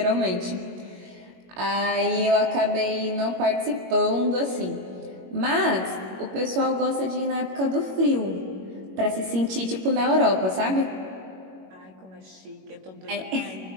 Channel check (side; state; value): left; late; 21 ms